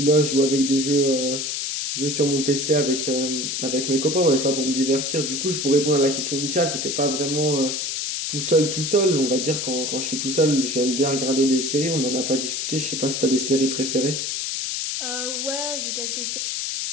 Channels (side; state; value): left; noise; hiss, 2 dB below the sound